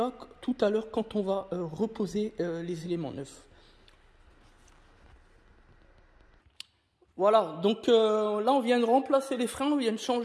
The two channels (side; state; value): both; identical; correlation 1.00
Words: tout à l'heure quand on va reposer les éléments neufs. Voilà, donc là on vient de remplacer les freins, on vient de